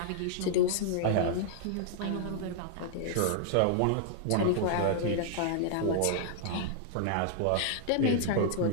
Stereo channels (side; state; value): both; different; correlation -0.01